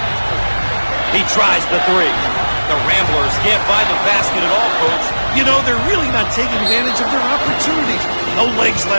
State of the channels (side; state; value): both; inverted; correlation -1.00